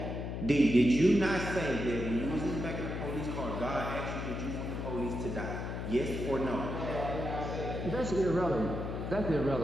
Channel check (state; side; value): noise; left; hum, 4 dB below the sound